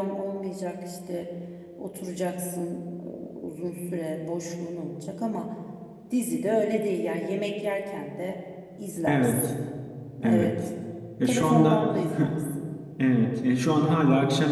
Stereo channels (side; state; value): both; identical; correlation 1.00